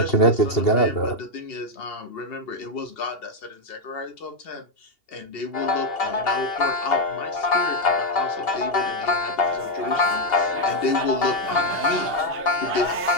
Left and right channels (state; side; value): late; right; 2.8 ms